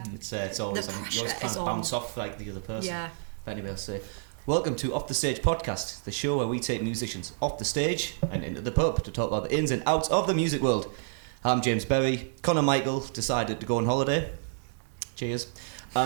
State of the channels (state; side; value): silent; left; digital silence